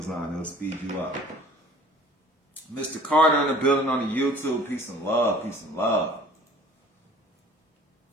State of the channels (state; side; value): normal; both; correlation 0.50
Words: It'll speed you up. Mr. Carter in the building on the YouTube. Peace and love. Peace and love.